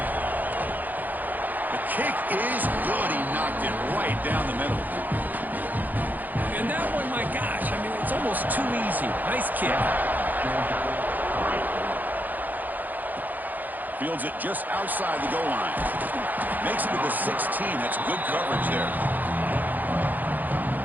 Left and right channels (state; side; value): late; left; 0.084 ms